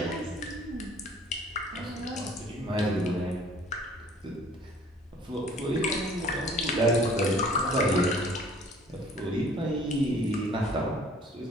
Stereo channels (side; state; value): both; normal; correlation 0.53